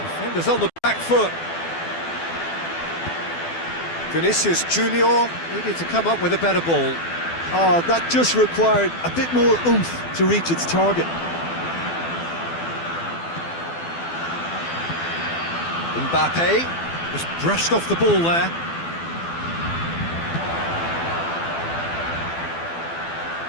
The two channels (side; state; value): right; late; 12 ms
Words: Defenders on the back foot. Vinicius Junior needed to come up with a better ball. Oh, that just required a bit more oomph to reach its target. Mbappe just brushed off the ball there.